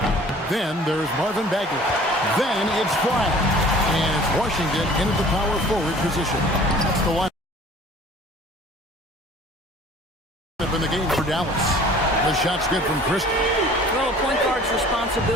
Then there's Marvin Bagley. Then it's Bryant. And it's Washington into the power forward position. That's the line up in the game for Dallas. The shot's good from Christie. Well, a point guard's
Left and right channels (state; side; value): normal; both; correlation 0.49